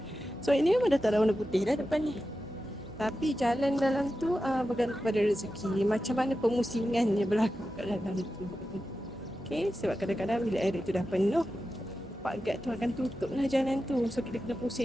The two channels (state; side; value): normal; both; correlation 0.91